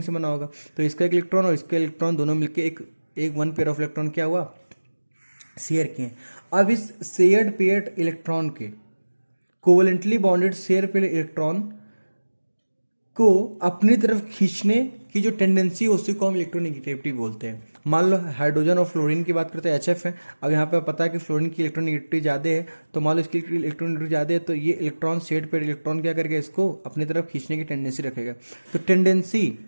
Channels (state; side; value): inverted; both; correlation -1.00